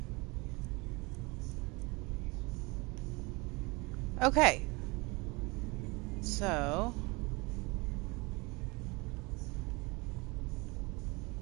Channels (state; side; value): quieter; left; 26.3 dB